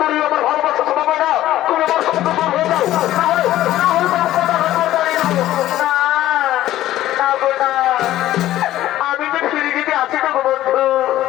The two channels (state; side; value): quieter; right; 14.2 dB